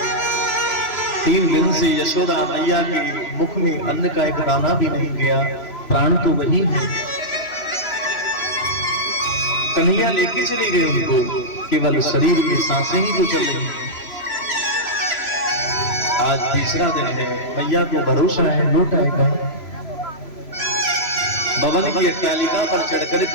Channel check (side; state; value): right; late; 3.0 ms